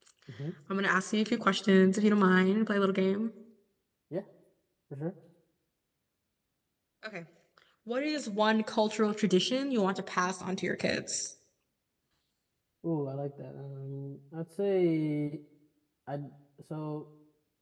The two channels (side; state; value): both; identical; correlation 1.00